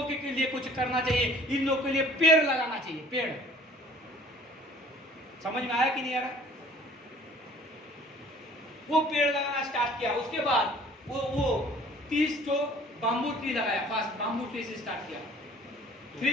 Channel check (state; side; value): normal; both; correlation 0.52